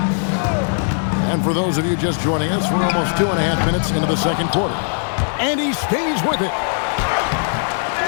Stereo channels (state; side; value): silent; right; 66 dB below the other